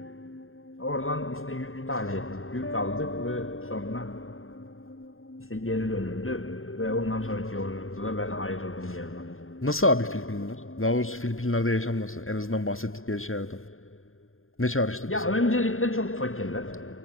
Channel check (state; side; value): late; right; 0.61 ms